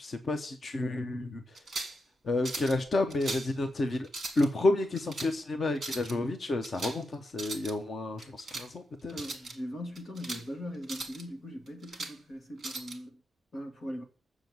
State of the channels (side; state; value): both; normal; correlation 0.86